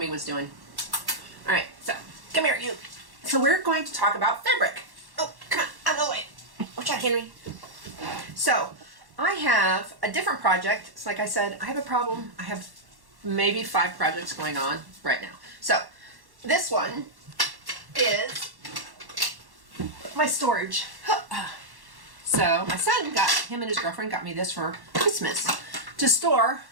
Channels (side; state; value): left; late; 1.1 ms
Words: was doing. All right, so come here, you. So we're going to talk about fabric. Oh, come on, out of the way. Watch out, Henry. So I have a different project. It's like I said, I have a problem. I have maybe 5 projects going on right now. So this one is my storage. So my son him and his girlfriend got me this for Christmas to store